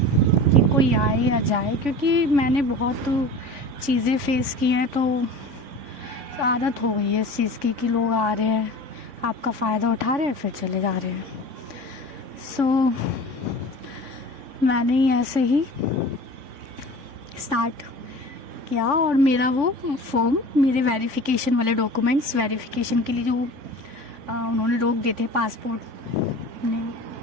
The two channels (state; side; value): late; left; 3.5 ms